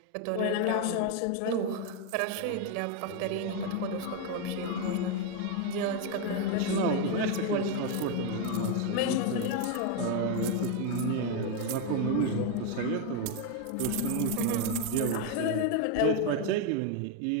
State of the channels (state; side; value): different; both; correlation 0.02